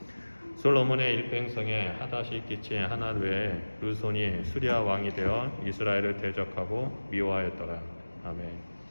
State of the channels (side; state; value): both; inverted; correlation -1.00